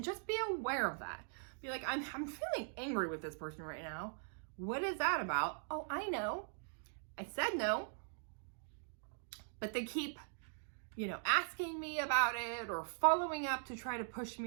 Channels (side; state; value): left; silent; digital silence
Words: just be aware of that. Be like, I'm feeling angry with this person right now. What is that about? Oh, I know. I said no, but they keep, asking me about it or following up to try to push